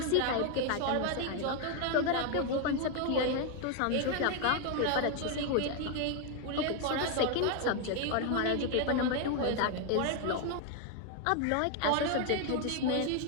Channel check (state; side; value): different; both; correlation 0.01